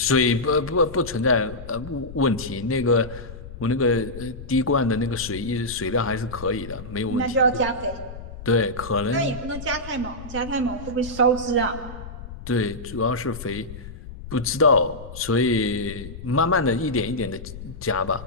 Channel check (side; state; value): left; noise; rumble, 13 dB below the sound